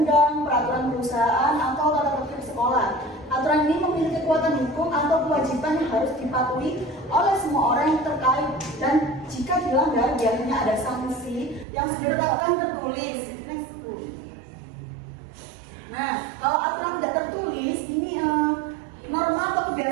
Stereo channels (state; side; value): drops out; left; at 11.7 s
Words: peraturan perusahaan, atau tata tertib sekolah. Aturan ini memiliki kekuatan hukum atau kewajiban yang harus dipatuhi oleh semua orang yang terkait, dan jika dilanggar biasanya ada sanksi yang sudah ditetapkan tertulis. Next Bu. Nah, kalau aturan tidak tertulis ini norma atau